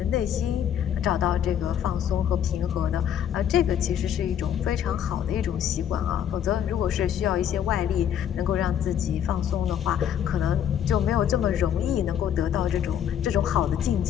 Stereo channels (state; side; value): quieter; right; 9.5 dB